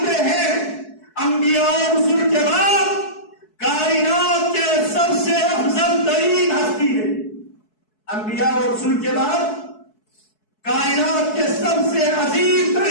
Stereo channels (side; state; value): right; late; 4.7 ms